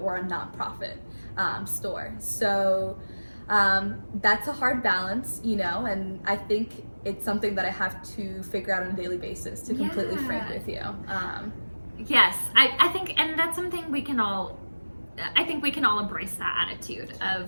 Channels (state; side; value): inverted; both; correlation -1.00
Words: we're a nonprofit store. So that's a hard balance, and I think it's something that I have to figure out on a daily basis, to completely frank with you. Yes, I think, and that's something we can all, I think we can all embrace that attitude